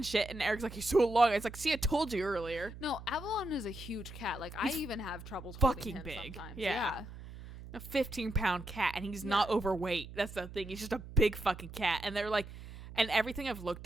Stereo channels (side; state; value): right; noise; hum, 13 dB below the sound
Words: shit. And Eric's like, he's so long. It's like, see, I told you earlier. No, Avalon is a huge cat. Like, He's I even have trouble fucking him big. Sometimes. Yeah. A 15-pound cat. And he's not overweight. That's the thing. He's just a big fucking cat. And they're like, and everything I've